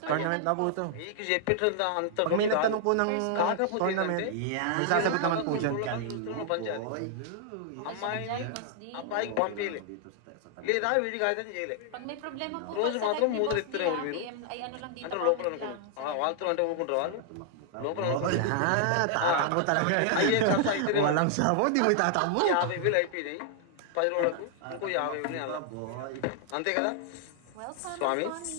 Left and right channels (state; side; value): different; both; correlation -0.01